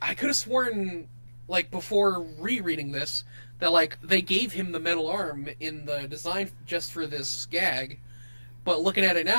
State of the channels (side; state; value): both; inverted; correlation -1.00